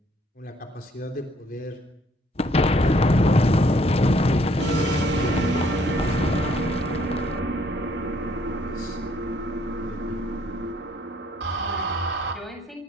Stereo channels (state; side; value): normal; both; correlation 0.65